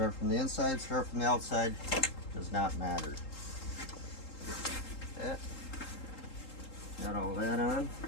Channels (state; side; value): late; right; 3.8 ms